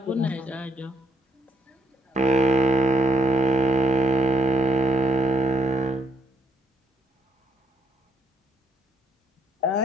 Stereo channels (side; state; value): both; normal; correlation 0.71